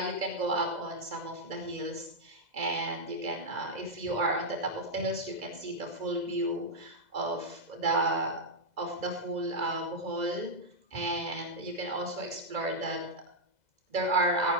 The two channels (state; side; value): late; left; 2.0 ms